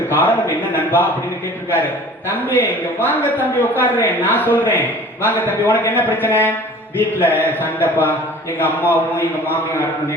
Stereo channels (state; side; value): normal; both; correlation 0.45